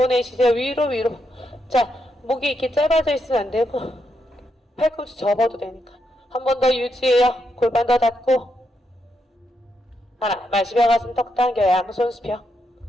내쉬세요. 위로. 자, 목이 이렇게 짧아져 있으면 안 되고 팔꿈치 접어도 되니까 한 번 더 유지해요. 골반 더 닫고 하나, 마시며 가슴 턱 당겨 양손 수평.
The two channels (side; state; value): both; normal; correlation 0.81